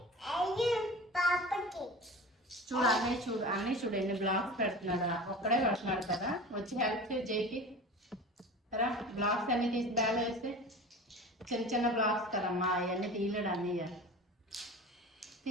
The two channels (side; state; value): both; normal; correlation 0.36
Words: చూడు అన్నీ చూడు ఎన్ని బ్లాక్స్ పెడుతున్నారా, ఒక్కడే పెడుతున్నాడు కదా. వచ్చి హెల్ప్ చేయి జైకి రా. బ్లాక్స్ అన్ని తీసి బ్యాగ్ వేస్తే చిన్న చిన్న బ్లాక్స్ కదమ్మా, అవన్నీ తీయలేడు అన్నీ